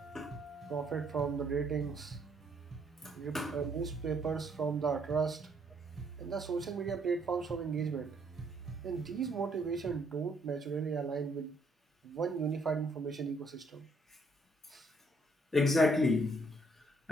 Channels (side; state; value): both; normal; correlation 0.68